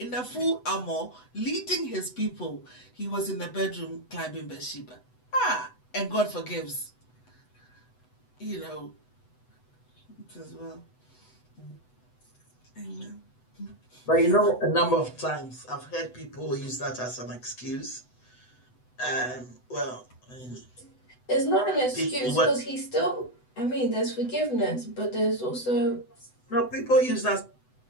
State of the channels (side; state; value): right; late; 8.0 ms